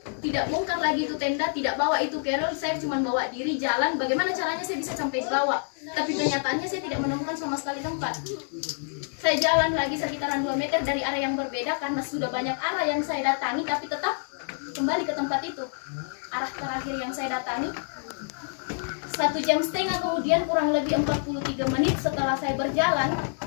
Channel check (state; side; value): silent; right; digital silence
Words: tidak bongkar lagi itu tenda, tidak bawa itu carol, saya cuma bawa diri jalan. Bagaimana caranya saya bisa sampai bawah? Tapi kenyataannya saya tidak menemukan sama sekali tempat. Saya jalan lagi sekitaran 2 meter dari arah yang berbeda karena sudah banyak arah yang saya datangi, tapi tetap kembali ke tempat itu. Arah terakhir yang saya datangi 1,5 jam kemudian, kurang lebih 43 menit setelah saya berjalan.